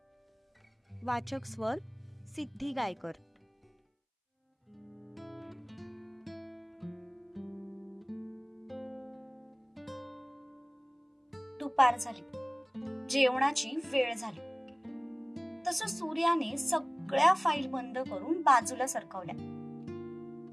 वाचक स्वर सिद्धी गायकर. दुपार झाली, जेवणाची वेळ झाली. तसं सूर्याने सगळ्या फाईल बंद करून बाजूला सरकवल्या.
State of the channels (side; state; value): both; identical; correlation 1.00